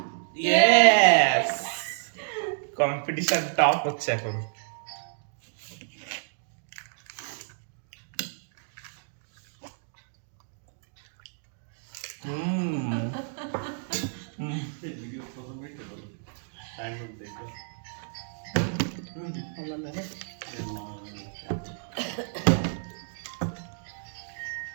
यस কম্পিটিশন টপ হচ্ছে এখন। ये वीडियो फोटो में क्या बोलो टाइम में देखा হলো না রে।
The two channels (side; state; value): left; silent; digital silence